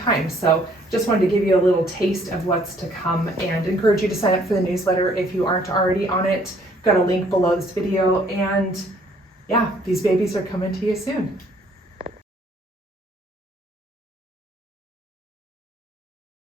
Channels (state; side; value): normal; both; correlation 0.62